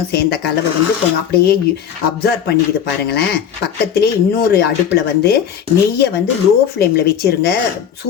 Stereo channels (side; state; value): right; quieter; 8.5 dB